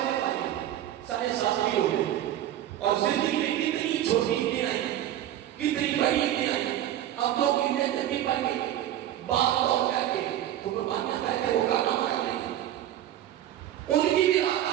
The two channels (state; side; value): quieter; left; 12.2 dB